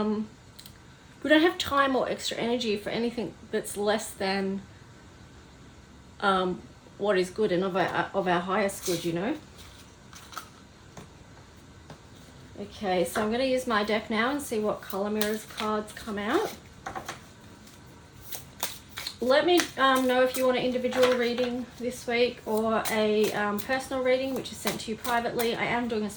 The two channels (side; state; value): both; identical; correlation 1.00